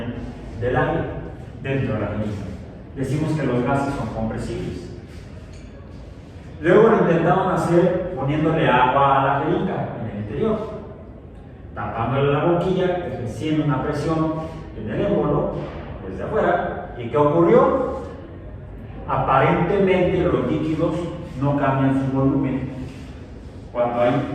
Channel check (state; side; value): identical; both; correlation 1.00